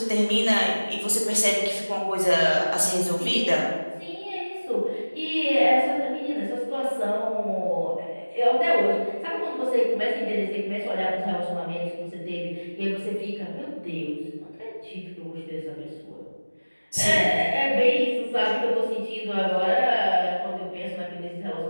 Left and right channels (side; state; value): both; inverted; correlation -1.00